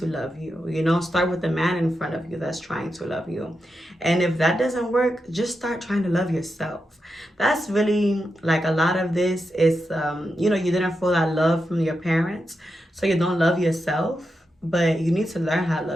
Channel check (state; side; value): normal; both; correlation 0.87